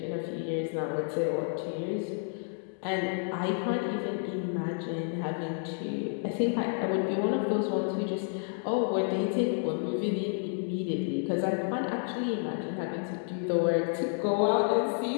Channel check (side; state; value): right; silent; 57 dB below the other